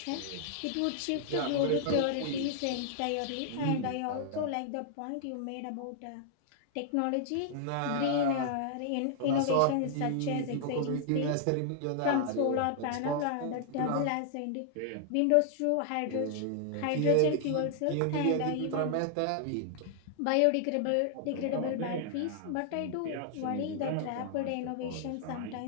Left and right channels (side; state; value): both; different; correlation -0.01